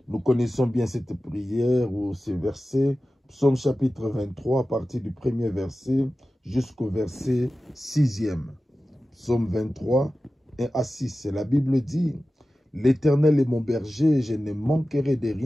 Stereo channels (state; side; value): normal; both; correlation 0.95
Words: Nous connaissons bien cette prière ou ce verset. Psaume chapitre 23, à partir du premier verset jusqu'au verset 6e. Psaume 23, 1 à 6. La Bible dit, « L'Éternel est mon berger, je ne manquerai de